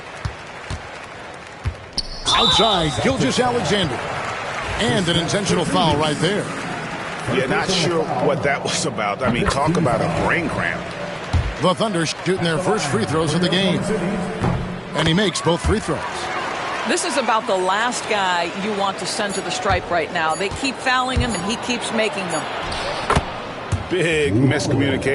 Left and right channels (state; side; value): identical; both; correlation 1.00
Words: Outside, Gilgeous-Alexander. And an intentional foul right there. Yeah, not sure what that was about. I mean, talk about a brain cramp. The Thunder shooting their first free throws of the game. And he makes both free throws. This is about the last guy you want to send to the stripe right now. They keep fouling him, and he keeps making them. Big